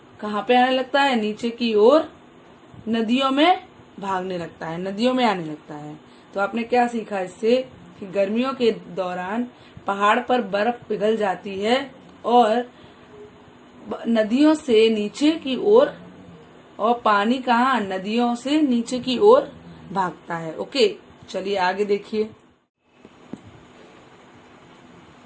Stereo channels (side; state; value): both; identical; correlation 1.00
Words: कहाँ पे आने लगता है, नीचे की ओर नदियों में भागने लगता है, नदियों में आने लगता है। तो आपने क्या सीखा इससे, कि गर्मियों के दौरान पहाड़ पर बर्फ पिघल जाती है और नदियों से नीचे की ओर, और पानी कहाँ, नदियों से नीचे की ओर भागता है। ओके, चलिए आगे देखिए।